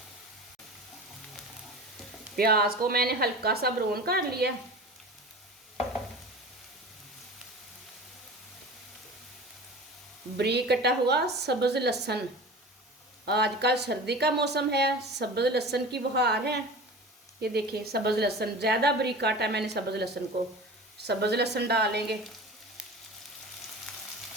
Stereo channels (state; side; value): normal; both; correlation 0.35